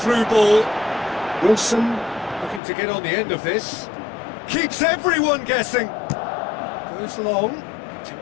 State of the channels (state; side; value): drops out; right; at 2.6 s